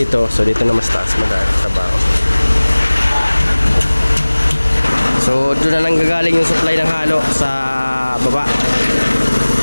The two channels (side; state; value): both; inverted; correlation -1.00